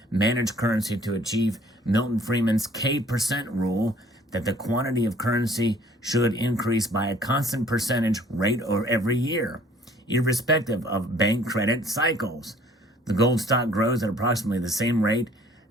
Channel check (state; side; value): normal; both; correlation 0.56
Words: managed currency to achieve Milton Friedman's K% rule that the quantity of currency should increase by a constant percentage rate or every year, irrespective of bank credit cycles. The gold stock grows at approximately the same rate